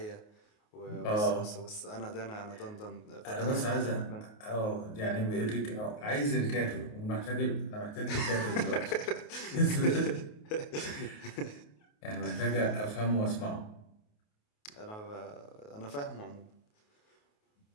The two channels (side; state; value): right; late; 28 ms